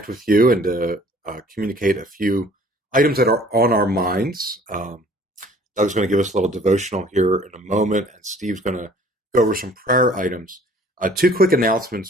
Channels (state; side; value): normal; both; correlation 0.53